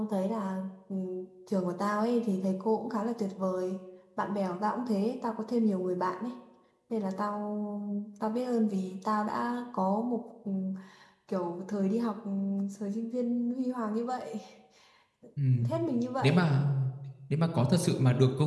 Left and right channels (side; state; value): both; identical; correlation 1.00